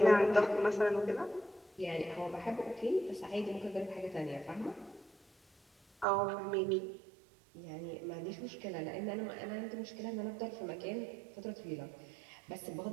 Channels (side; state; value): left; drops out; at 6.1 s